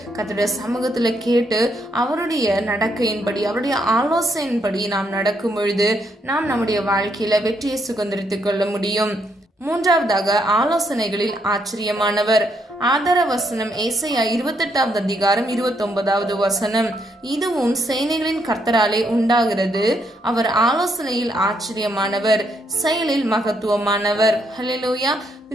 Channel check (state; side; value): normal; both; correlation 0.75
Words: கர்த்தருடைய சமூகத்துல கேட்டு அவருடைய நடக்கையின்படி, அவருடைய ஆலோசனையின்படி நாம் நடக்கும் பொழுது நாம் நம்முடைய வாழ்க்கையில வெற்றியை சுதந்திரித்துக் கொள்ள முடியும். மூன்றாவதாக, ஆலோசனைகளில் ஆச்சரியமானவர். ஆதார வசனம் ஏசாயா 28வது அதிகாரம் 29வது வசனம். இதுவும் சேனைகளின் கர்த்தராலே உண்டாகிறது, அவர் ஆலோசனையில் ஆச்சரியமானவர், செயலில் மகத்துவமானவர். ஹல்லேலூயா.